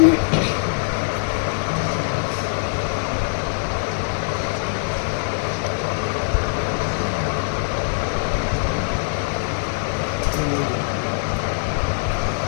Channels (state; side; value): silent; right; digital silence